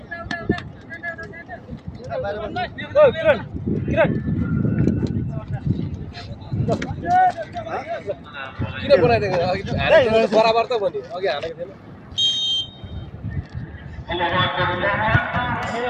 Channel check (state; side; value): identical; both; correlation 1.00